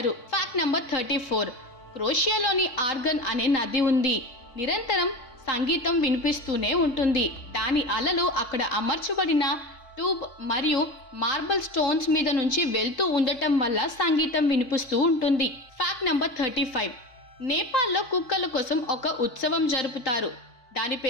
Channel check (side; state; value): right; late; 3.8 ms